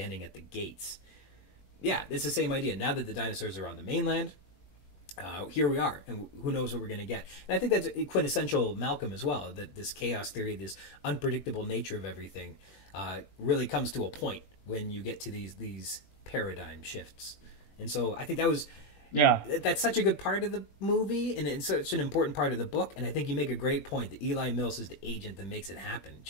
at the gates. Yeah, it's the same idea. Now that the dinosaurs are on the mainland, here we are, and who knows what we're going to get. And I think that's quintessential Malcolm as well, that this chaos theory, this unpredictable nature of everything, really comes to a point when you get to these paradigm shifts. And so I think that's such a good part of the movie, and it's such an important part of the book. And I think you make a great point that Eli Mills is the agent that makes it happen,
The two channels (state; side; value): late; right; 20 ms